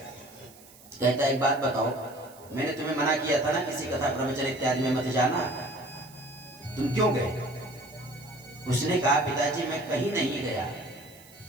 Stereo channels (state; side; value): noise; right; hiss, 23 dB below the sound